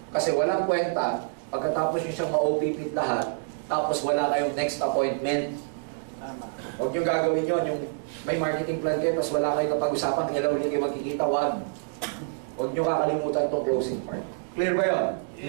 Kasi walang kwenta, pagkatapos nyo siyang ma-OPP lahat, tapos wala kayong next appointment. Huwag nyo gagawin yun, yung may marketing plan kayo, tapos wala kayong kapag-usapan, kailan ulit kayo magkikita, huwag nyo kakalimutan itong closing part. Clear ba yun?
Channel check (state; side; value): silent; left; digital silence